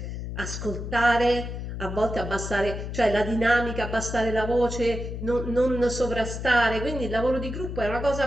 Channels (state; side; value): noise; left; hum, 6 dB below the sound